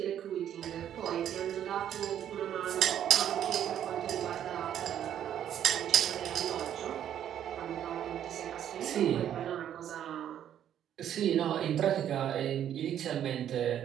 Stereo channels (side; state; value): left; quieter; 10.2 dB